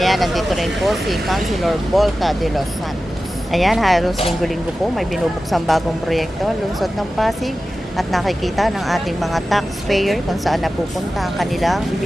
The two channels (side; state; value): both; normal; correlation 0.94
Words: nandito rin po si Councilor Volta de los Santos. Ayan, halos linggo-linggo po may binubuksang bagong proyekto, lungsod ng Pasig, at nakikita ng ating mga taxpayer kung saan napupunta ang kanilang